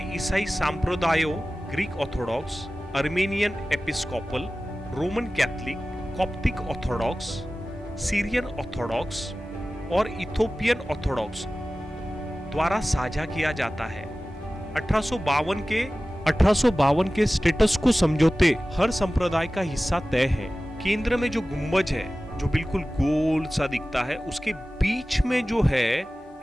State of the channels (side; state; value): both; normal; correlation 0.96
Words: ईसाई संप्रदायों, Greek Orthodox, Armenian Episcopal, Roman Catholic, Coptic Orthodox, Syrian Orthodox और इथोपियन ऑर्थोडॉक्स द्वारा साझा किया जाता है। 1852 के स्टेटस को समझौते हर संप्रदाय का हिस्सा तय है। केंद्र में जो गुंबज है, जो बिल्कुल गोल सा दिखता है, उसके बीच में जो है